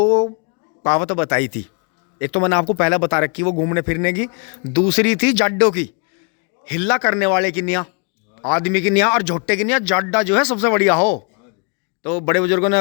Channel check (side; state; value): right; quieter; 36.3 dB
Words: कहावत बताई थी। एक तो मैंने आपको पहले बता रखी, वो घूमने फिरने की। दूसरी थी जाड्डों की, हिल्ला करने वाले की निया, आदमी की निया, और झोट्टे की निया। जाड्डा जो है सबसे बढ़िया हो। तो बड़े बुजुर्गों